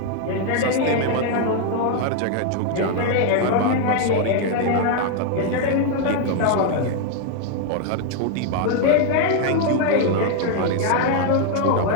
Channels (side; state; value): both; different; correlation 0.00